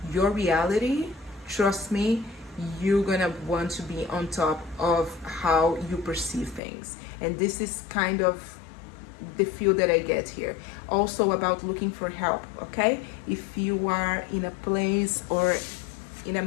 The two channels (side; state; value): right; drops out; at 6.6 s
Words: your reality, trust me, you're gonna want to be on top of how you perceive things. And this is kind of the feel that I get here. Also about looking for help, okay? If you are in a place or in a